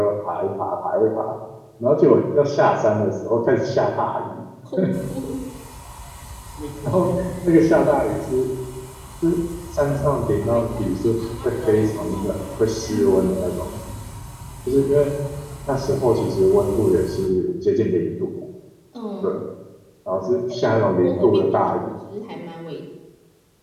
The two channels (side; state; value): both; identical; correlation 1.00